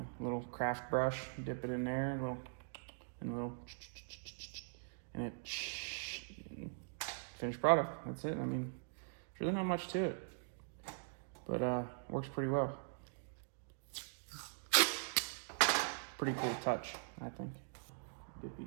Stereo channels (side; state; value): left; silent; digital silence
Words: little craft brush, dip it in there, and it finished product. That's it. I mean, there's really not much to it, but works pretty well. Pretty cool touch, I think. Dippy